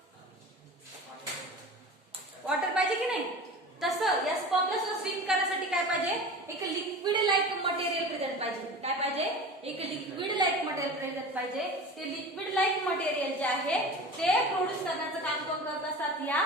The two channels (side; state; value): both; normal; correlation 0.34